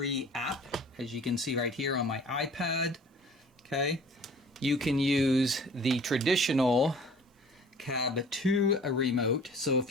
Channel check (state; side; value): normal; both; correlation 0.48